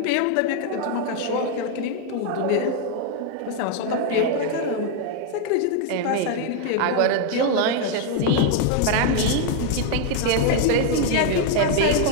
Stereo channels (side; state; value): both; different; correlation 0.01